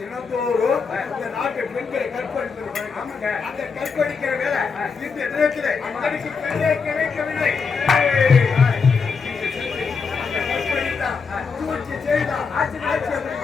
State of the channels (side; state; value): right; quieter; 5.3 dB